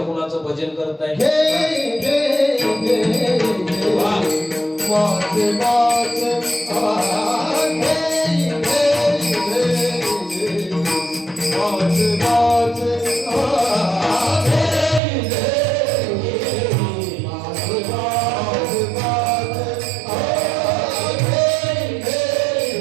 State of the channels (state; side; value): drops out; left; at 15.0 s